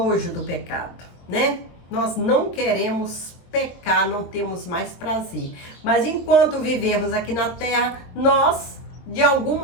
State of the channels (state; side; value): late; right; 23 ms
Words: do pecado, né? Nós não queremos pecar, não temos mais prazer. Mas enquanto vivemos aqui na terra, nós, de algum